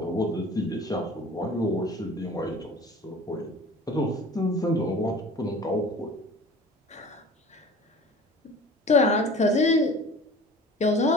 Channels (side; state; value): both; normal; correlation 0.43